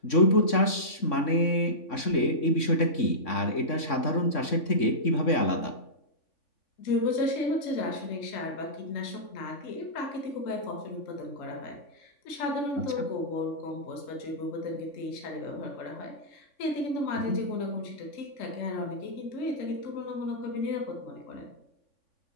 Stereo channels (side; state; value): right; late; 3.6 ms